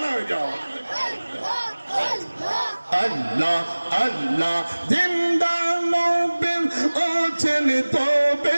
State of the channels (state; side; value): inverted; both; correlation -1.00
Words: হয়ে যাও আল্লাহ আল্লাহ জিন্দা নবীর আছেন